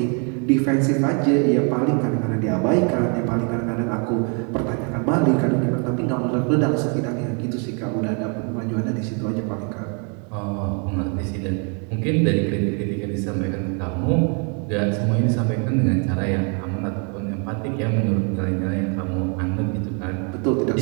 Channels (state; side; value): quieter; left; 37.3 dB